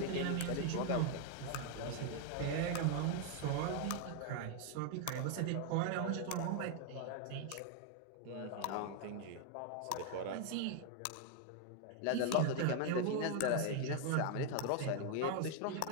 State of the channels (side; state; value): both; different; correlation 0.00